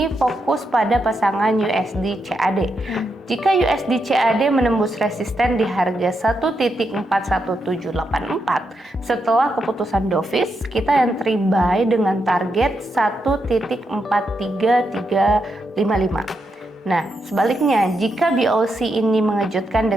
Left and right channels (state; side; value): normal; both; correlation 0.83